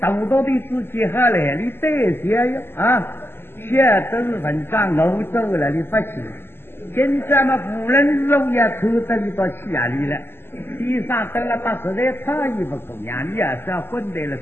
队自己好来，你对些呀现在都是文章欧洲了，你不去。现在嘛，无论肉也抽得你到气压里了。地上得了把实在差异不够呀，你也是要混在了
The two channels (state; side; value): late; right; 0.11 ms